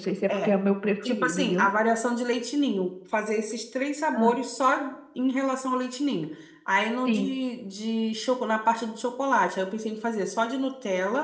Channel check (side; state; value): both; identical; correlation 1.00